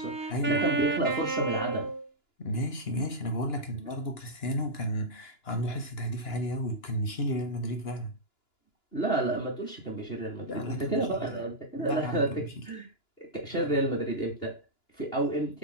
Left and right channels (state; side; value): late; right; 2.9 ms